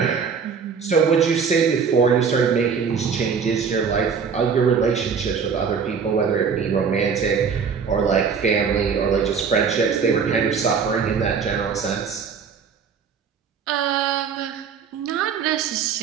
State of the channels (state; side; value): quieter; left; 6.2 dB